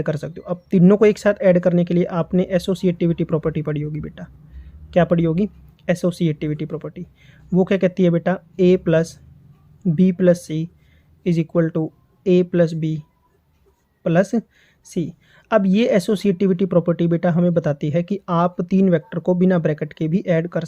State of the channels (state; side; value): identical; both; correlation 1.00